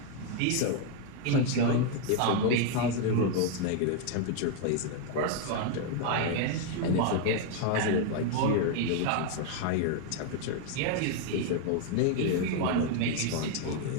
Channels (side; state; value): both; different; correlation 0.00